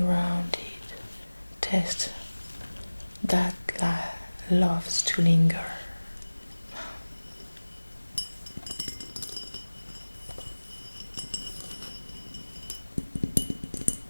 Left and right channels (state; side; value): inverted; both; correlation -1.00